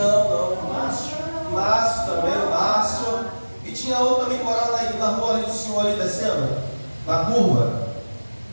Márcio também, o Márcio. E tinha outro também morando aí na rua ali do senhor ali descendo, na curva.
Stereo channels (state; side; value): inverted; both; correlation -1.00